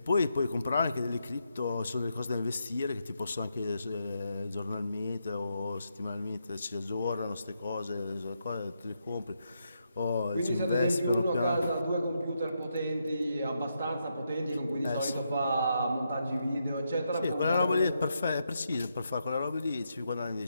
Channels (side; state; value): both; inverted; correlation -0.82